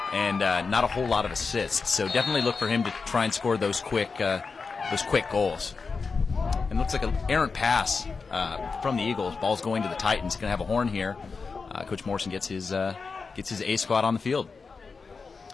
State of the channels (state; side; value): quieter; right; 4.7 dB